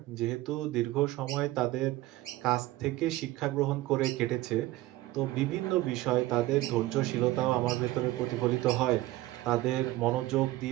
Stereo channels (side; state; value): left; quieter; 17.3 dB